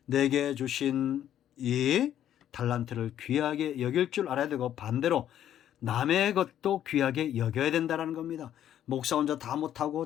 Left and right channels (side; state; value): right; quieter; 10.9 dB